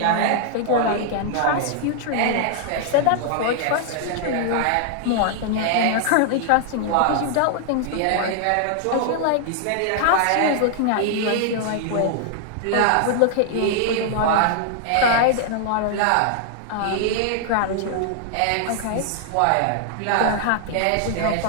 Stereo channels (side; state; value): both; different; correlation 0.00